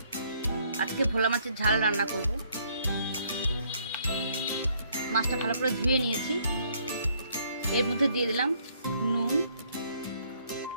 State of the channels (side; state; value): both; inverted; correlation -0.66